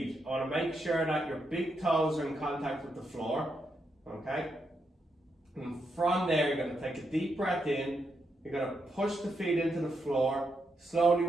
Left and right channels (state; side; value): normal; both; correlation 0.82